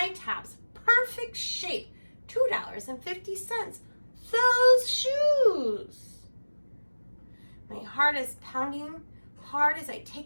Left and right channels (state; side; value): inverted; both; correlation -1.00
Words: tops, perfect shape, $2.50. Those shoes. My heart is pounding hard as I